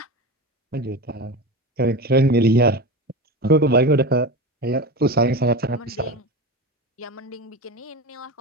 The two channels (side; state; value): both; normal; correlation 0.25